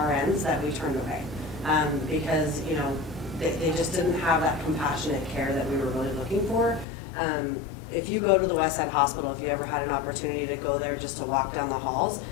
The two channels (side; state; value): right; drops out; at 6.9 s